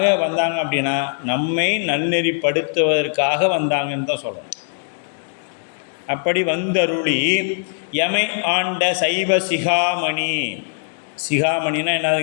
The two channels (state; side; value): silent; right; digital silence